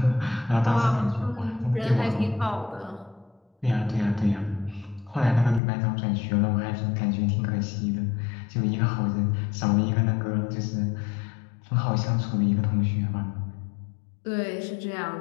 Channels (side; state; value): right; drops out; at 5.6 s